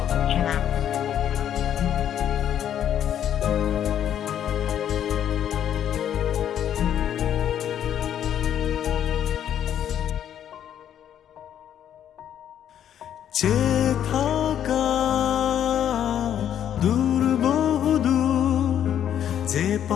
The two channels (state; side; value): quieter; right; 10.0 dB